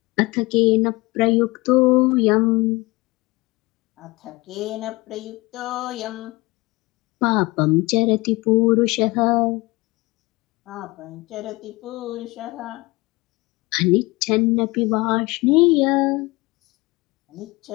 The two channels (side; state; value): right; quieter; 22.9 dB